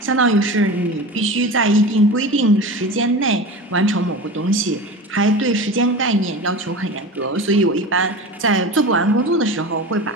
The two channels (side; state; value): both; normal; correlation 0.31